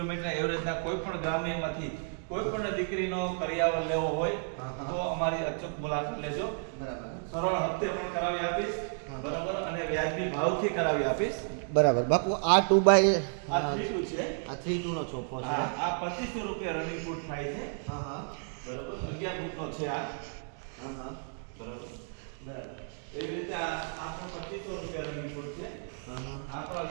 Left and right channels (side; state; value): left; silent; 57 dB below the other